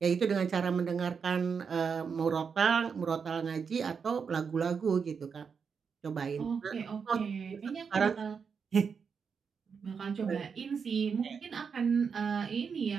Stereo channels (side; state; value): left; quieter; 6.1 dB